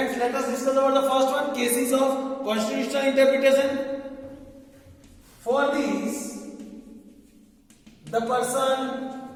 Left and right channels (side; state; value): both; identical; correlation 1.00